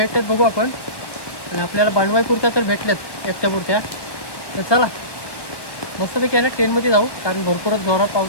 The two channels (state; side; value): late; right; 1.1 ms